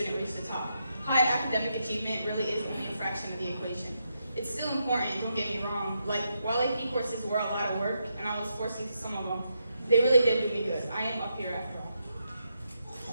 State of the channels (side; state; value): both; inverted; correlation -0.82